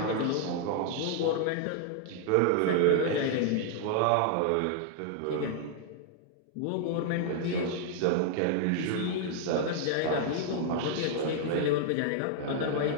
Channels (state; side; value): different; both; correlation 0.00